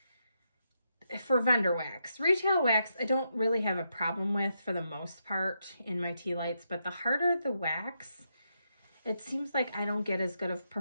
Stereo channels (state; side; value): inverted; both; correlation -0.82